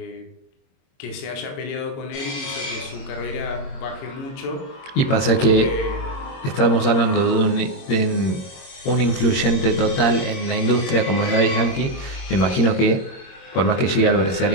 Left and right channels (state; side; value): late; right; 22 ms